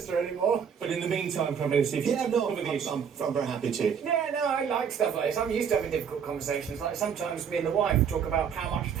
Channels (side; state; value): left; quieter; 7.3 dB